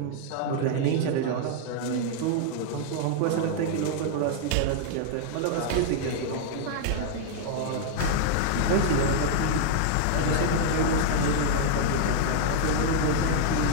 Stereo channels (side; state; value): both; different; correlation -0.01